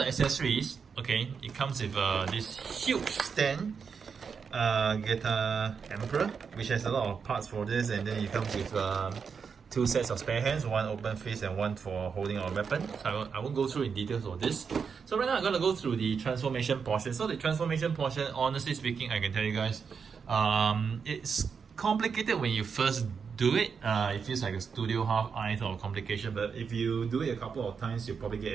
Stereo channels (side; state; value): left; quieter; 6.0 dB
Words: accessories, okay, it comes with this huge stand, Getter Emperor, which has a lot of parts for this, and then it comes with two sets of spare hands, one open fist and one for holding our weapon. So I won't go through in details of this. So right now I'm going to go through the transformation portion. So the transformation portion, honestly speaking, I can tell you guys, it's complicated when you first do it. It feels like a studio half-eyes or complication, but if you do it a couple of times, you'll probably